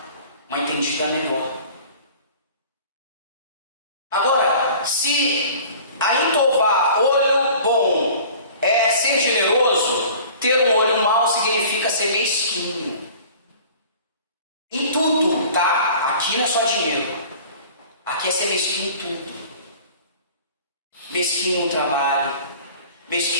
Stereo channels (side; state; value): both; inverted; correlation -0.45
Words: uma entendida melhor. Agora, se a intová, olho bom, é ser generoso, ter um olho mau significa ser mesquinho. Em tudo, tá? Aqui não é só dinheiro. Aqui é ser mesquinho em tudo. Mesquinho no trabalho.